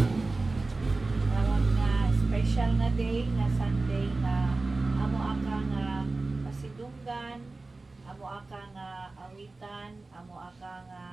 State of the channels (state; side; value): quieter; left; 3.4 dB